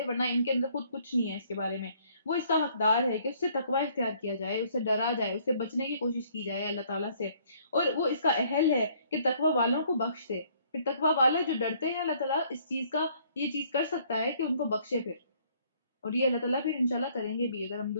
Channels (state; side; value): inverted; both; correlation -0.62